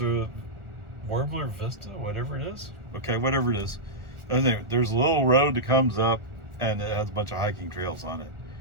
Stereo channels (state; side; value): late; left; 1.4 ms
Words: Warbler Vista, whatever it is. Okay, whatever it is. Anyway, there's a little road that comes up, and it has a bunch of hiking trails on it.